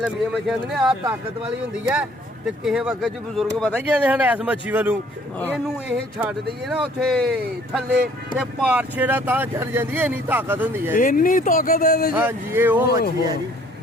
ਮੱਛੀਆਂ ਨੇ, ਆਹ ਤਾਕਤ ਵਾਲੀ ਹੁੰਦੀ ਹੈ। ਤੇ ਕਿਸੇ ਵਕਤ ਚ ਬਜ਼ੁਰਗ ਪਤਾ ਕੀ ਕਹਿੰਦੇ ਹਨ ਇਸ ਮੱਛੀ ਵੱਲੋਂ ਇਹਨੂੰ ਇਹ ਛੱਡ ਦਈਏ ਨਾ ਉੱਥੇ ਥੱਲੇ ਤੇ ਪਾਰਛੇ ਦਾ ਤਾਂ ਚੜ ਜਾਂਦੀ ਹੈ, ਇੰਨੀ ਤਾਕਤ ਹੁੰਦੀ ਹੈ। ਇੰਨੀ ਤਾਕਤ ਹੈ ਇਹਦੇ 'ਚ? ਹਾਂਜੀ ਇਹ ਉਹ ਮੱਛੀ ਹੈ ਜੀ।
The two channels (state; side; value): normal; both; correlation 0.58